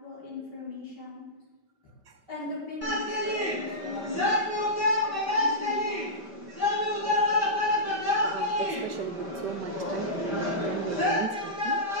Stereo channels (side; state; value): left; late; 5.1 ms